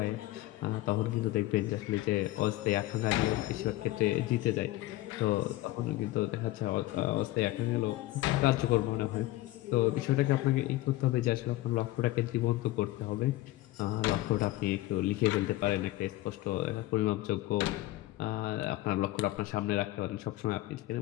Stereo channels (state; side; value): quieter; right; 17.1 dB